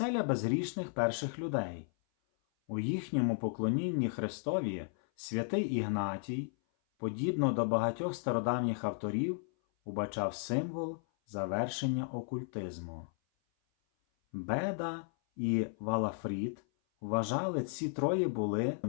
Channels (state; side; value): silent; right; 55 dB below the other